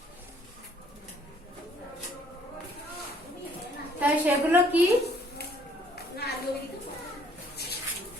তাই সেগুলো কি?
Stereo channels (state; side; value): normal; both; correlation 0.62